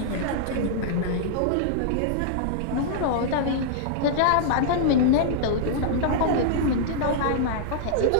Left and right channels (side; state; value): both; different; correlation -0.02